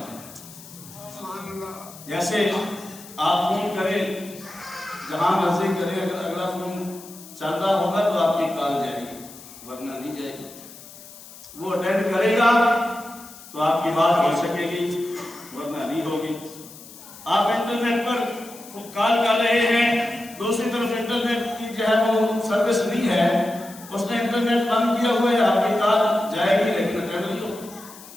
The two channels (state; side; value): noise; left; hiss, 18 dB below the sound